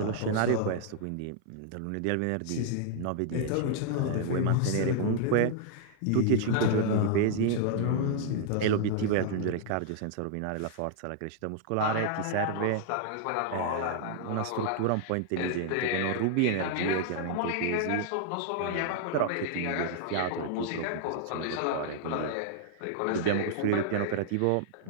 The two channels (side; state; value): both; different; correlation -0.01